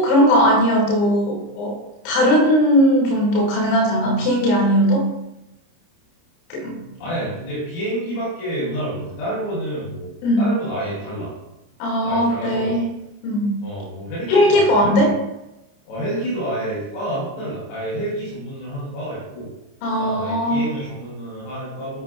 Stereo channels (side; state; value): right; late; 29 ms